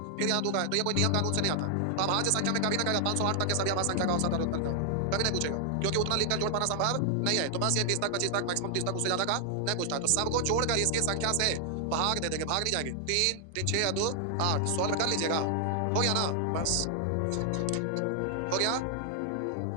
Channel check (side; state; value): both; different; correlation 0.00